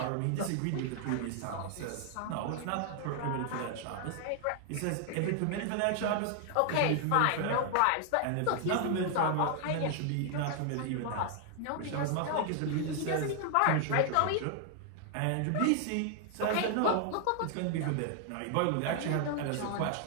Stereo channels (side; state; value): both; different; correlation 0.00